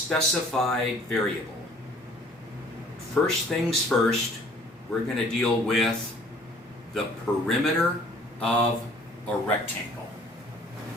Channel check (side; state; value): both; normal; correlation 0.55